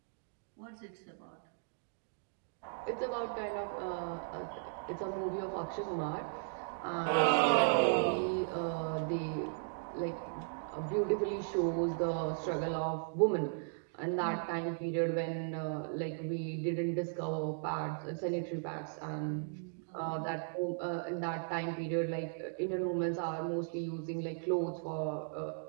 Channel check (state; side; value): silent; left; digital silence